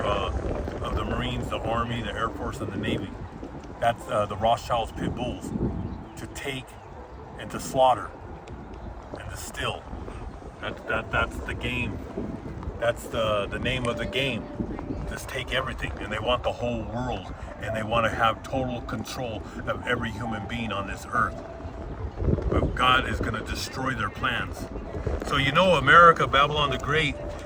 of the Marines, the Army, the Air Force, and the Navy. That's the Rothschilds pit bulls, to take and to slaughter and to steal. That's the game. That's the name of the game. Just take everything, and they want the whole world, and they want to have total control of every human being on this earth. But God is going to destroy their plans. So you know, America, Babylon the Great,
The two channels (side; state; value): both; identical; correlation 1.00